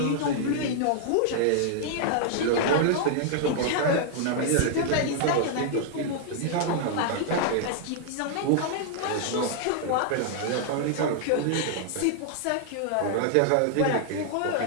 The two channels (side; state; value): both; different; correlation -0.01